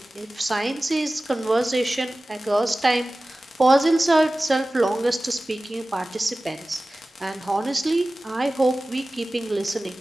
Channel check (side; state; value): both; normal; correlation 0.97